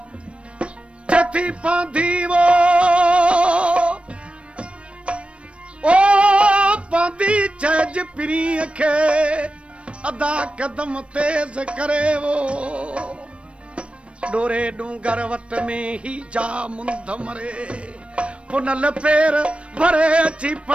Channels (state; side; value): late; left; 0.060 ms